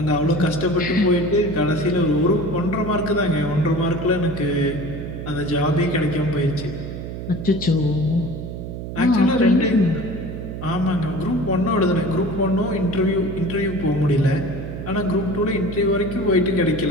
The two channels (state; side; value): noise; right; hum, 8 dB below the sound